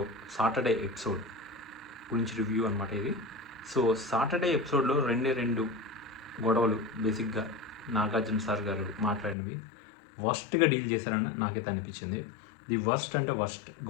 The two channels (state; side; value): drops out; right; at 9.3 s